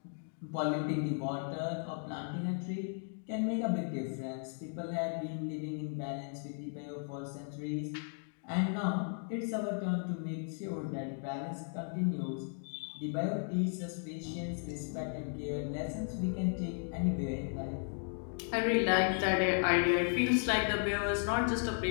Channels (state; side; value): silent; right; 54 dB below the other